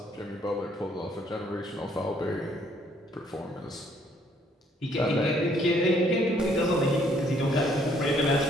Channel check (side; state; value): both; normal; correlation 0.65